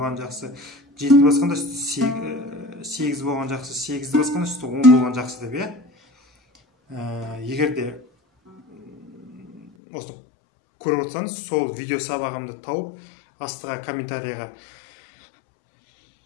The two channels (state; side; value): drops out; right; at 9.7 s